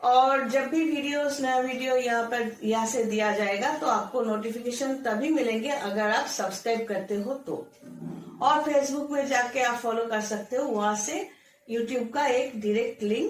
और जब भी नया वीडियो यहाँ से दिया जाएगा तो आपको नोटिफिकेशन तभी मिलेंगे अगर आप सब्सक्राइब करते हो तो। और फेसबुक में जाके आप फॉलो कर सकते हो, वहां से यूट्यूब का एक डायरेक्ट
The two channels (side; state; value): both; identical; correlation 1.00